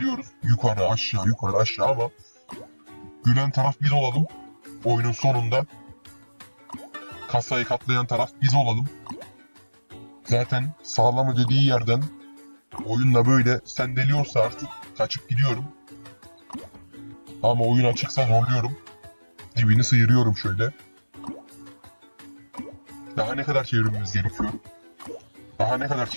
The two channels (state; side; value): inverted; both; correlation -1.00